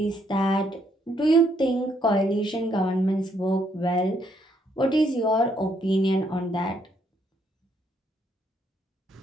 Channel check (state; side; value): normal; both; correlation 0.72